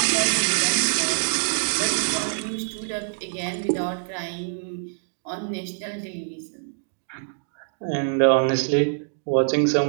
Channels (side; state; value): left; silent; digital silence